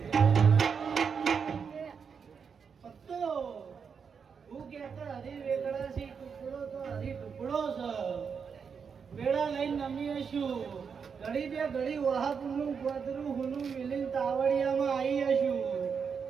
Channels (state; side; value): quieter; left; 6.3 dB